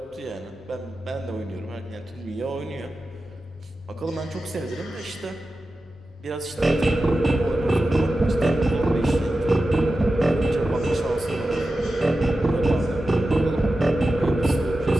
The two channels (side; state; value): both; normal; correlation 0.93